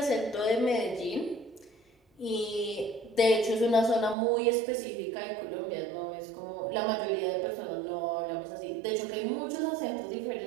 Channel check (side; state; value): left; drops out; at 4.2 s